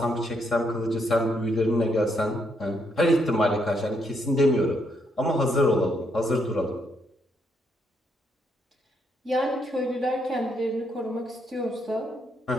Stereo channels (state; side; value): normal; both; correlation 0.75